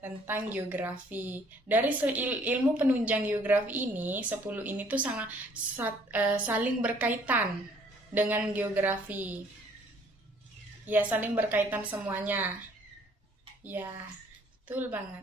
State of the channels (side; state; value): both; normal; correlation 0.60